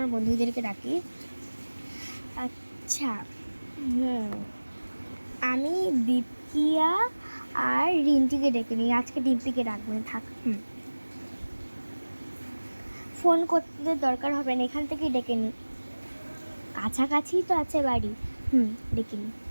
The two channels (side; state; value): both; inverted; correlation -1.00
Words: বন্ধুদেরকে ডাকি। আচ্ছা, আমি দীপকিয়া আর রিন্টিকে ডেকে নিই। আজকে ডিম্পিকে ডাকবো না, থাক। ফোন করতে দরকার হবে না, এখান থেকেই ডেকে নিই, কাছাকাছি তো আছে বাড়ি। ডেকে নিই।